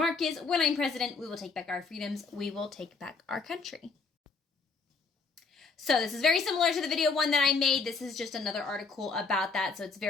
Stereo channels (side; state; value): right; quieter; 4.5 dB